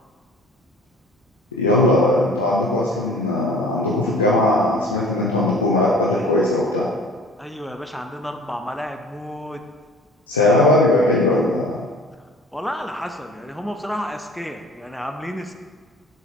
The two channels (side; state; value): both; normal; correlation 0.45